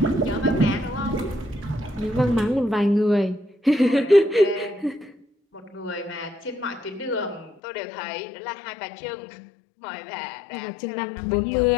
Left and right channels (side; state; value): right; drops out; at 7.6 s